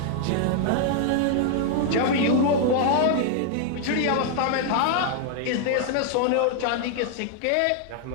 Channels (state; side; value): different; both; correlation 0.00